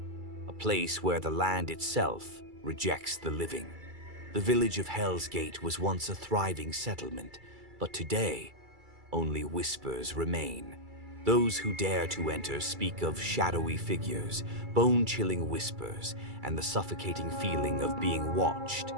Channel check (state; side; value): late; left; 2.3 ms